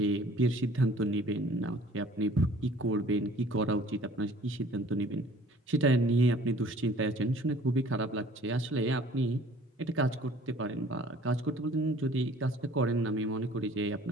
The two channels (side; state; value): both; normal; correlation 0.52